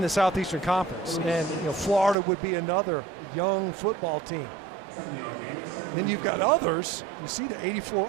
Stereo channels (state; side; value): drops out; left; at 2.1 s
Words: the Southeastern Conference, and Florida would be another young football team. And then you've got others. You see the 84